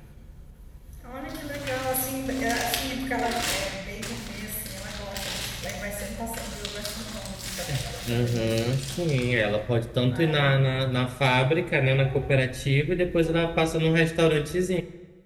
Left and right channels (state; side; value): identical; both; correlation 1.00